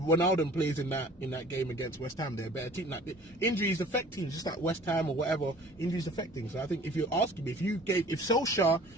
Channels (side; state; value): both; normal; correlation 0.48